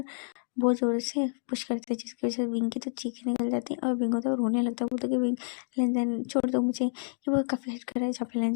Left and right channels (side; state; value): right; silent; 58 dB below the other